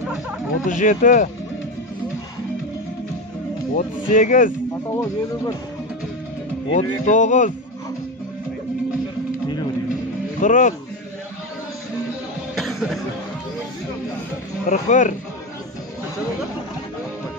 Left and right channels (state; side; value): normal; both; correlation 0.17